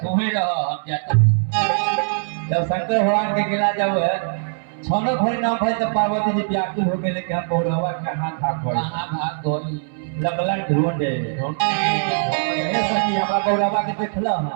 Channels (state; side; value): silent; left; 62 dB below the other